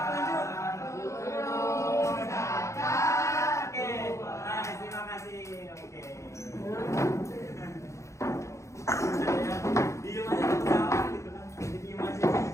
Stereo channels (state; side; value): late; right; 0.14 ms